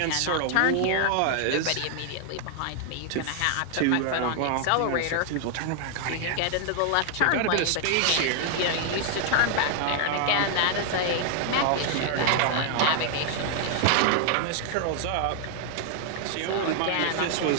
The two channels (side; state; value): both; different; correlation 0.00